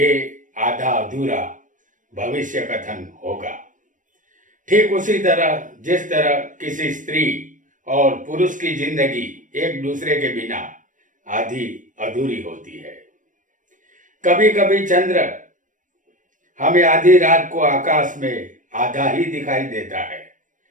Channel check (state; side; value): late; left; 0.38 ms